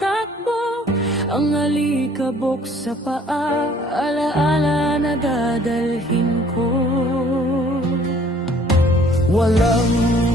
Ang alikabok sa paa, alaala na dadalhin ko. Walang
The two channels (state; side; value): normal; both; correlation 0.57